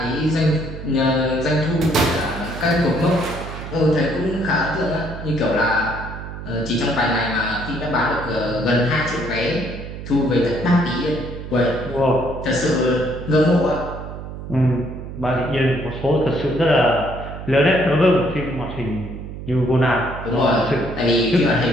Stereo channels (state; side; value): noise; right; hum, 10 dB below the sound